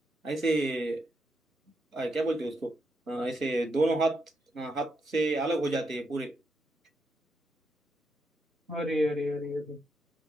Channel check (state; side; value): normal; both; correlation 0.81